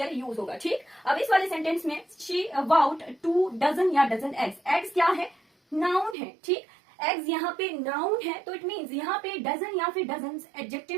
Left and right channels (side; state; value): left; drops out; at 6.2 s